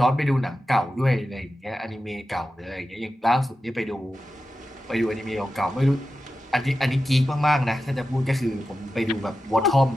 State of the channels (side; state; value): both; normal; correlation 0.92